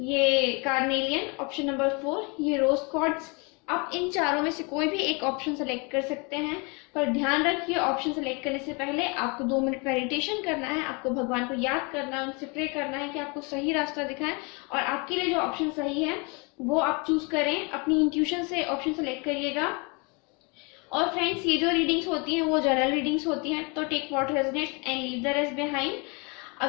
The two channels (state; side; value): quieter; right; 31.0 dB